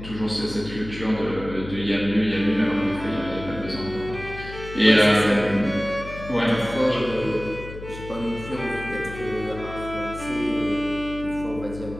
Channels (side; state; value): left; noise; hum, 12 dB below the sound